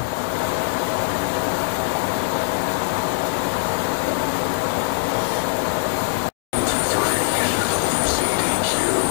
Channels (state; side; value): silent; right; digital silence